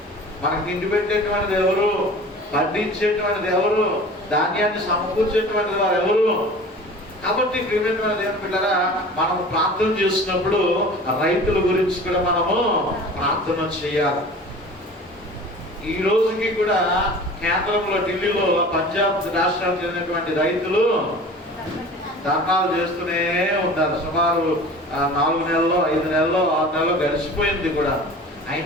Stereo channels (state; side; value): normal; both; correlation 0.41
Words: మనకి తిండి పెట్టేటువంటిది ఎవరు? పండించేటువంటిది ఎవరు? ధాన్యాన్ని సమకూర్చేటువంటిది వారు ఎవరు? కాబట్టి ప్రియమైన దేవుని బిడ్డలారా, మనం ప్రార్థన చేస్తున్నప్పుడు రైతుల గురించి కూడా మనము ప్రార్థన చేయాలి. ఈ రోజుకి కూడా కేంద్రంలో ఢిల్లీలో పంజాబ్ రాష్ట్రానికి చెందినటువంటి రైతులు ధర్నాలు చేస్తూనే ఉంటారు. సుమారు 4 నెలల్లో, 5 నెలల్లో, 6 నెలల్లో గడిచిపోయింది కూడా.